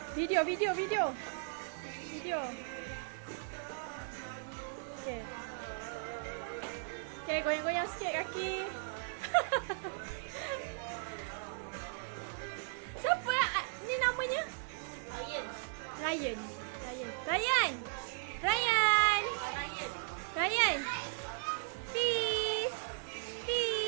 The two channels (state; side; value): silent; left; 53 dB below the other